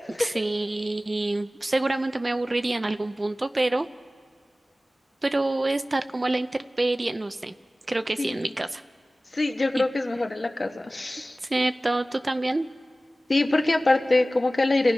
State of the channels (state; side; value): normal; both; correlation 0.97